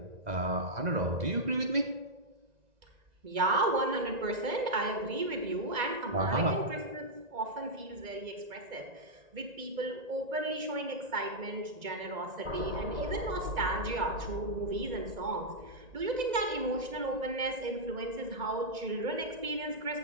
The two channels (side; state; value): left; late; 2.0 ms